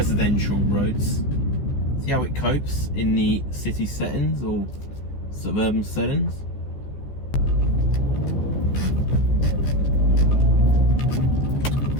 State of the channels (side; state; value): right; late; 15 ms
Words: roads, see how it copes in the city settings or suburban settings.